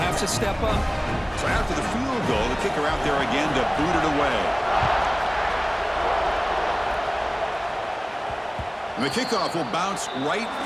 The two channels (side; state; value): both; identical; correlation 1.00